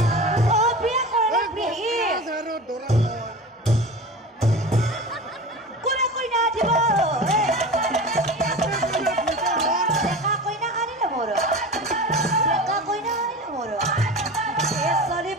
ও বিয়ে করে বিয়ে কোনে কই না দিব দেখা কই না আনিলে মোর দেখা কই না আনিলে মোর এ সরি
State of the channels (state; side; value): normal; both; correlation 0.32